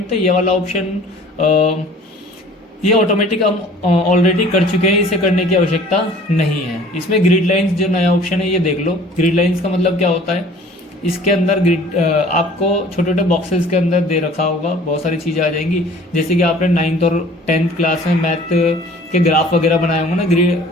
थे। ये वाला ऑप्शन ये ऑटोमेटिक हम ऑलरेडी कर चुके हैं, इसे करने की आवश्यकता नहीं है। इसमें ग्रिड लाइंस जो नया ऑप्शन है ये देख लो। ग्रिड लाइंस का मतलब क्या होता है, इसके अंदर ग्रिड आपको छोटे छोटे बॉक्सेस के अंदर दे रखा होगा, बहुत सारी चीज़ें आ जाएंगी। जैसे कि आपने 9th और 10th क्लास में मैथ के ग्राफ वगैरह बनाए होंगे ना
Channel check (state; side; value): normal; both; correlation 0.49